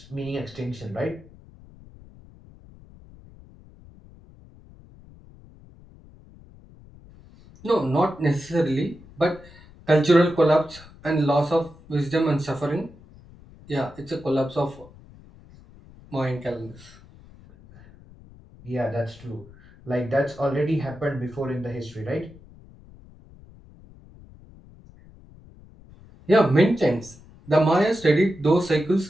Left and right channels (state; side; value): noise; left; rumble, 23 dB below the sound